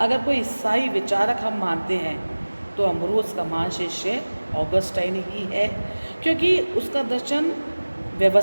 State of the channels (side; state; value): both; inverted; correlation -1.00